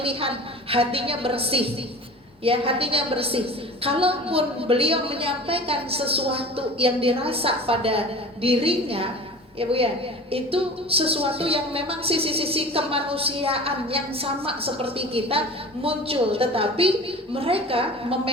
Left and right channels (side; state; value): both; normal; correlation 0.39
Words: hatinya bersih, ya, hatinya bersih. Kalaupun beliau menyampaikan sesuatu yang dirasa pada dirinya, ya Bu ya, itu sesuatu yang memang sisi-sisi kemanusiaan yang sama seperti kita muncul, tetapi mereka